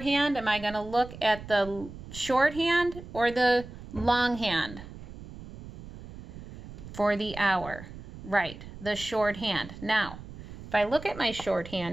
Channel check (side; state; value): right; noise; rumble, 14 dB below the sound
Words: Am I going to look at the short hand or the long hand for the hour? Right, the short hand. Now, if I look at my short